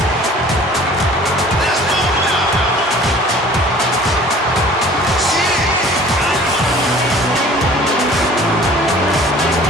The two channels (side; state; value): both; normal; correlation 0.48